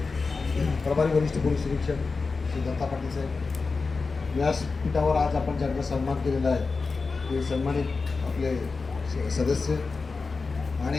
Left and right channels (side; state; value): right; quieter; 4.3 dB